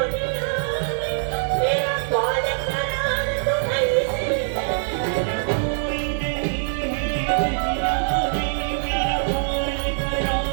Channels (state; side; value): silent; left; digital silence